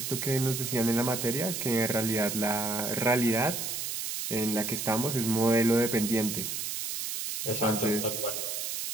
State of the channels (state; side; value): noise; right; hiss, 4 dB below the sound